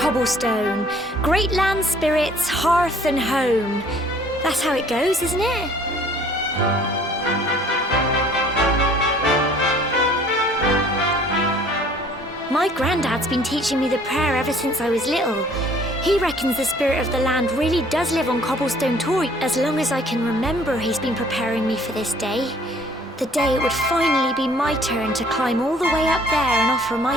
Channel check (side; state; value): both; normal; correlation 0.56